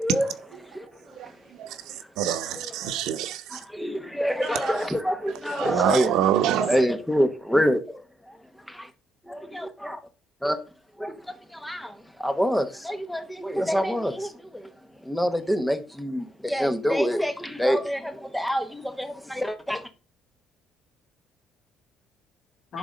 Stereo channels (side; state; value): both; normal; correlation 0.83